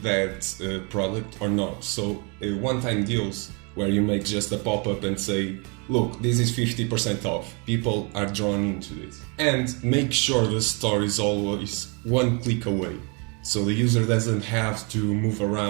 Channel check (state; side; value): quieter; left; 31.9 dB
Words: that product or not. So one-time deals where you make just a pop-up and say, look, this is 50% off. People are drawn into this. And make sure the store is always one click away, so the user doesn't have to move